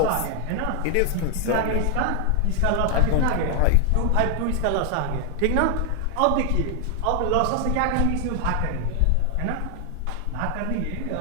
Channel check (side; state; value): both; different; correlation 0.00